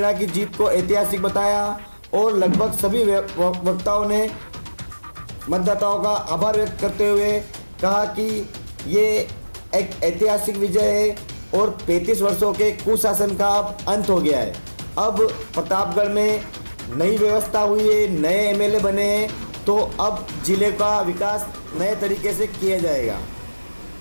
की जीत को ऐतिहासिक बताया और लगभग सभी वक्ताओं ने मतदाताओं का आभार व्यक्त करते हुए कहा कि ये एक ऐतिहासिक विजय है और 35 वर्षों के कुशासन का अब अंत हो गया है। अब प्रतापगढ़ में नई व्यवस्था हुई है, नए एमएलए बने हैं, तो अब जिले का विकास नए तरीके से किया जाएगा।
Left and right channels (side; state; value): both; inverted; correlation -1.00